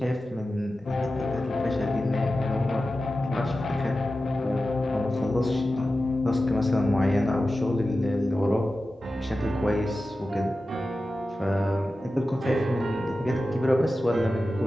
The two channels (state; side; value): normal; both; correlation 0.93